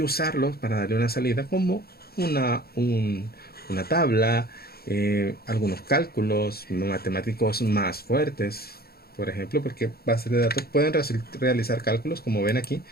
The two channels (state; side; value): late; right; 0.45 ms